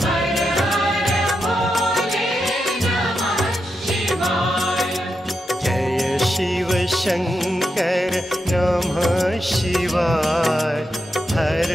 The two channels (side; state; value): both; normal; correlation 0.86